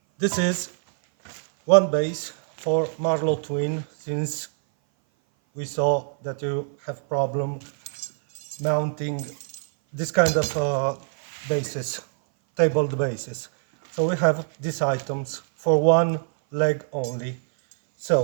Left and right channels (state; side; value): silent; left; 58 dB below the other